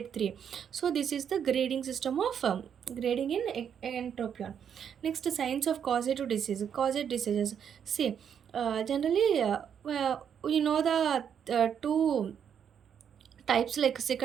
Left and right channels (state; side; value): quieter; left; 8.1 dB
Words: 3. So this is the grading system of grading in entropion. Next, signs of causative disease. Causative diseases. See, generally, we know the two types like